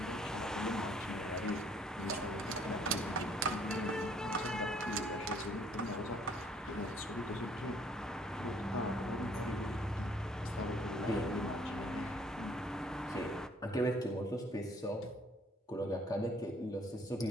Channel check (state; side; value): normal; both; correlation 0.61